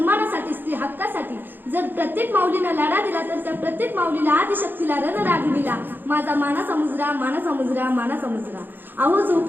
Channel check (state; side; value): late; left; 0.093 ms